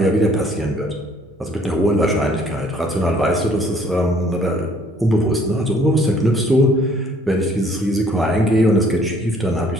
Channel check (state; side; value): normal; both; correlation 0.60